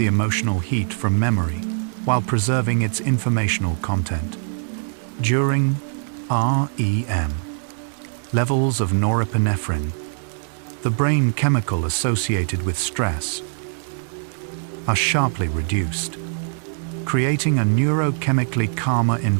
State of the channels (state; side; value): silent; left; digital silence